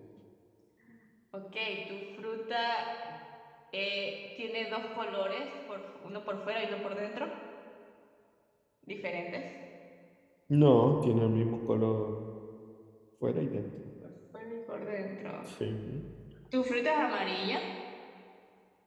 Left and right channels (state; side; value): identical; both; correlation 1.00